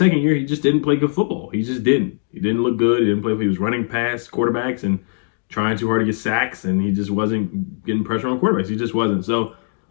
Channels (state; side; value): silent; right; digital silence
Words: year, he just didn't play good football. He just didn't. He didn't look good. He didn't play. He was running past quarterbacks and trying too hard to get sacks, and he just wasn't getting pressure on quarterbacks. He just wasn't. So